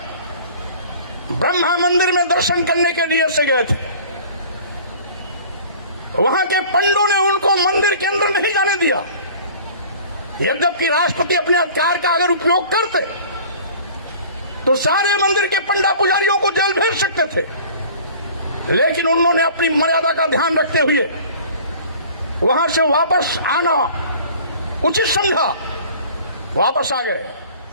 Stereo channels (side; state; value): both; inverted; correlation -0.46